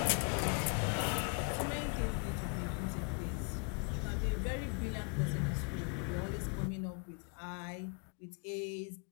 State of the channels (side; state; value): right; quieter; 36.9 dB